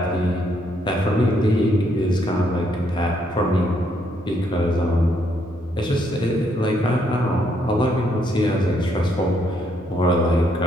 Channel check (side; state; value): both; normal; correlation 0.73